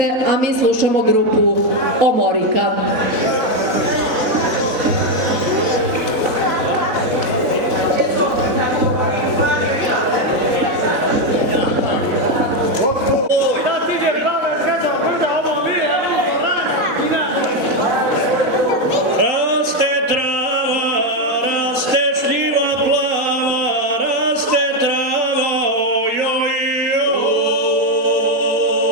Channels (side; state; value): left; late; 4.0 ms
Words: a mi slušamo grupu Omorika.